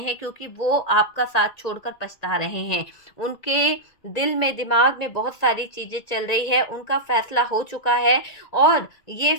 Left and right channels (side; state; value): right; late; 1.9 ms